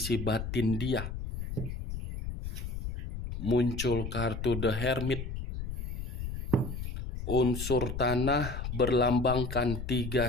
batin dia. Muncul kartu The Hermit. Unsur tanah berlambangkan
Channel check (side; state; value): left; noise; rumble, 5 dB below the sound